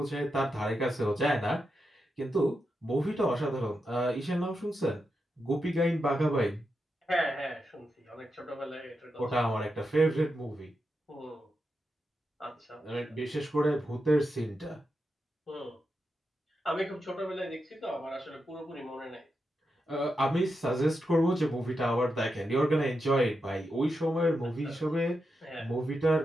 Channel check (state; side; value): normal; both; correlation 0.87